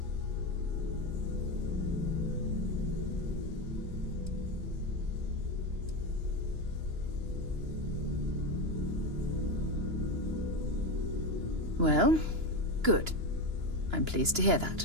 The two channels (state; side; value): late; left; 2.9 ms